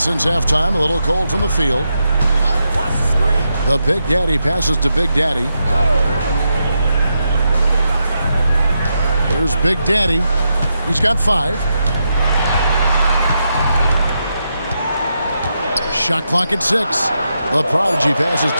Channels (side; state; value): both; inverted; correlation -0.84